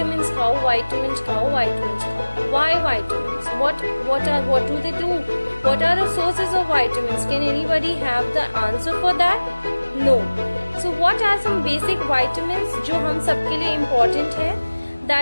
खाओ. Why vitamins? What do they do? What are the sources of vitamins? Can anybody have the answer for that? No. So what are some basic vitamins जो हम सबके लिए important है?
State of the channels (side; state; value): both; inverted; correlation -1.00